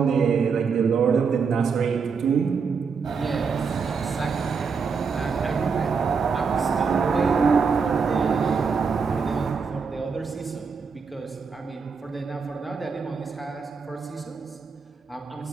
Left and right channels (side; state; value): left; quieter; 5.5 dB